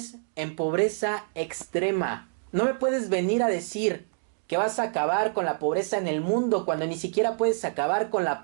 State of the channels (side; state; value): left; silent; digital silence